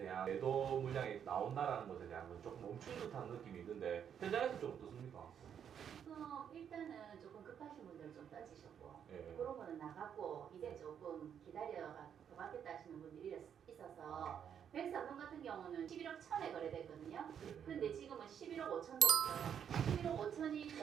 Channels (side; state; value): left; quieter; 8.4 dB